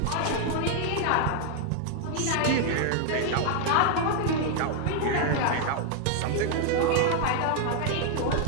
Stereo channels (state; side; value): different; both; correlation 0.00